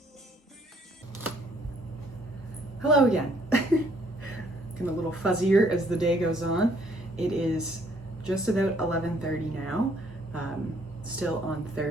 Hello again. Getting a little fuzzier as the day goes on. It is just about 11:30 now, still on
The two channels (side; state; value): both; normal; correlation 0.65